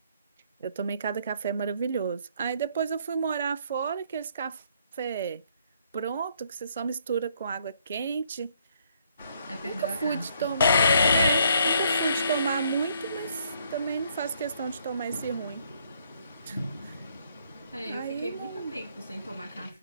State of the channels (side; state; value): both; inverted; correlation -0.68